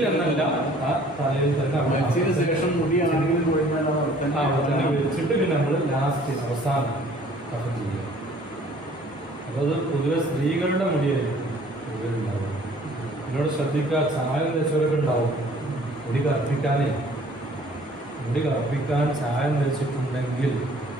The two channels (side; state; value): both; normal; correlation 0.54